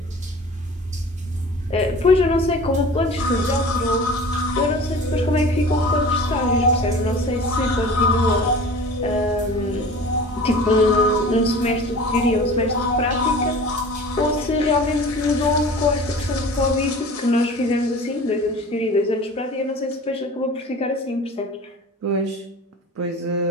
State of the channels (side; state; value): both; normal; correlation 0.41